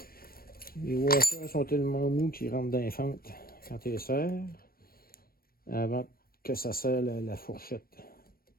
Les washers sont tellement mous qu'ils rentrent dans les fentes quand tu les serres avant que ça serre la fourchette.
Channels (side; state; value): right; late; 0.43 ms